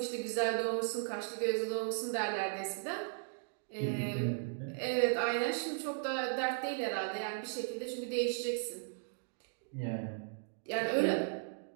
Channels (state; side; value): silent; left; digital silence